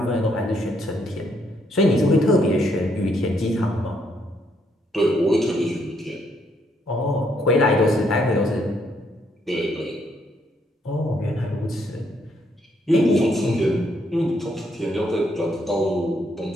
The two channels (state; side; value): normal; both; correlation 0.73